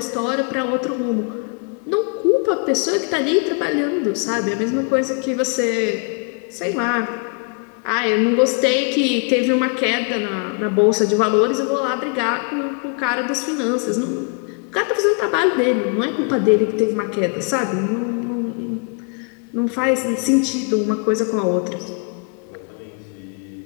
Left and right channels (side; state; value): right; quieter; 35.6 dB